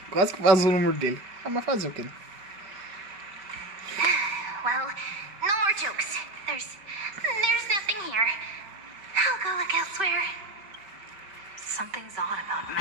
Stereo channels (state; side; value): late; left; 5.2 ms